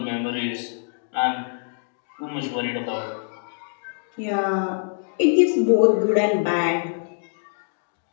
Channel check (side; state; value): right; silent; digital silence